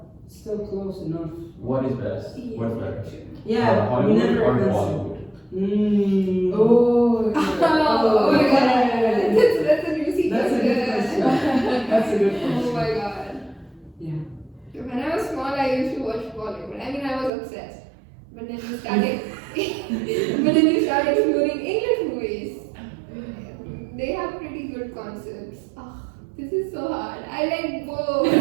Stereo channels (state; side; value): drops out; left; at 17.3 s